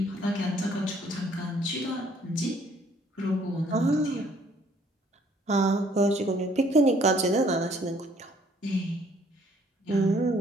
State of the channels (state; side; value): normal; both; correlation 0.61